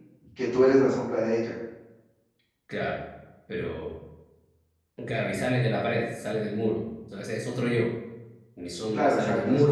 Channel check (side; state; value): both; identical; correlation 1.00